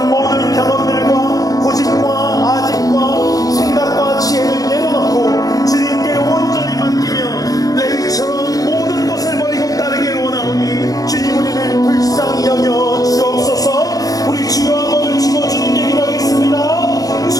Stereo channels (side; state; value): right; late; 0.18 ms